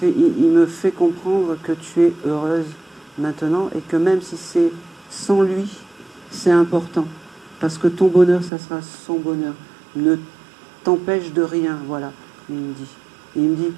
me fait comprendre que tu es heureuse maintenant et que même si c'est sans lui, c'est important. Parce que ton bonheur, ça sera son bonheur. Ne t'empêche de rien, voilà, il me dit. Et il me dit,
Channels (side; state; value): left; drops out; at 8.5 s